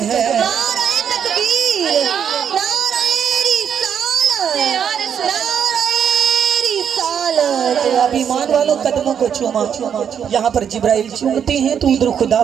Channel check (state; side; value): quieter; left; 8.1 dB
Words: نعرہ تکبیر، نعرہ رسالت، نعرہ رسالت۔ اب ایمان والوں قدموں کو چوما، یہاں پر جبرائیل چومتے ہیں تو ادھر خدا